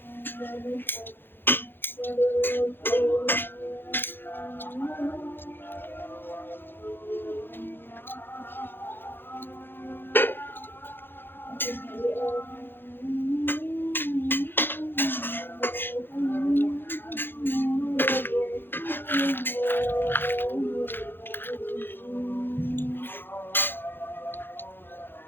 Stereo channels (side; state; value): right; late; 0.10 ms